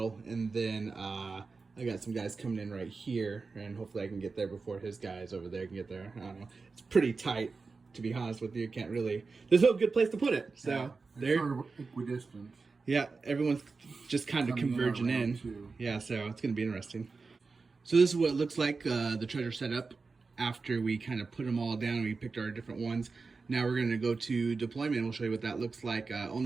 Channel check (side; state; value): left; quieter; 4.3 dB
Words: and then I got some guys coming in right here, and hopefully I can get there before his guys over there can get there. I don't know. It's pretty tight, to be honest with you. Can't really, there's no good place to put it. So yeah, they're sort of equidistant. Yeah, everyone's just kind of converging in. Yeah, so it's going to be interesting. So this is what it looks like, the treasure setup after we kind of put them all down and we picked our different ones. Now we're going to go to deployment and we'll show you what that looks like.